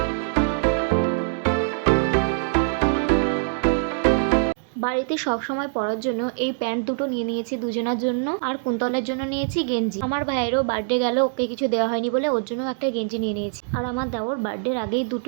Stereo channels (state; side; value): silent; left; digital silence